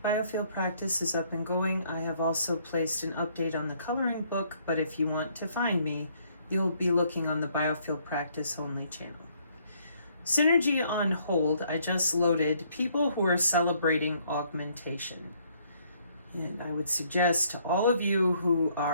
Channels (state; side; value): inverted; both; correlation -0.66